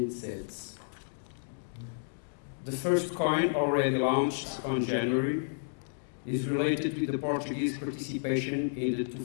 sets. The first coin, already launched on January, is related with the Portuguese participation in the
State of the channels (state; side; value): silent; right; digital silence